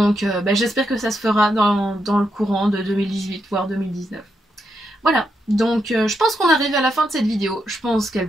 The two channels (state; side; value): normal; both; correlation 0.82